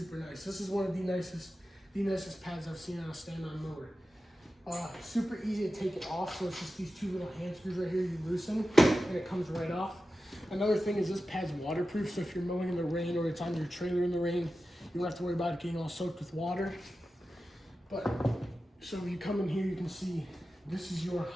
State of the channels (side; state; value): both; normal; correlation 0.93